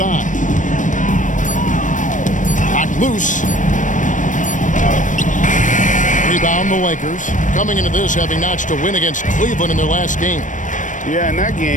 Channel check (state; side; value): late; right; 0.37 ms